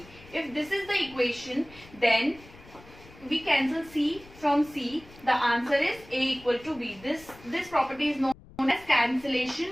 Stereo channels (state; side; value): noise; left; rumble, 22 dB below the sound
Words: If this is the equation, then we cancel C from C. The answer is A equal to B. This property is known as